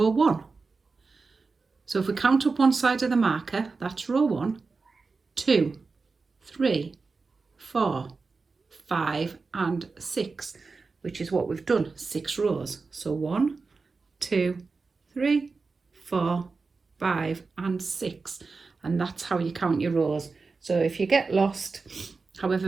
1. So if we count up one side of the marker, that's row 1, 2, 3, 4, 5 and 6, which is what we've done, 6 rows. So 1, 2, 3, 4, 5 and 6. And that's how you count your rows. So if you get lost, however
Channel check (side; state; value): left; quieter; 4.3 dB